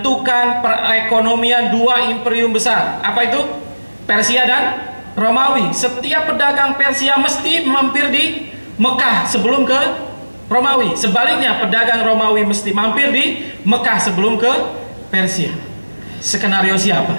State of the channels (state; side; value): inverted; both; correlation -1.00